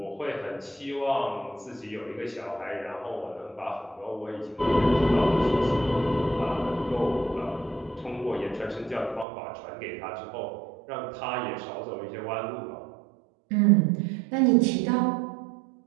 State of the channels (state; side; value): drops out; left; at 9.2 s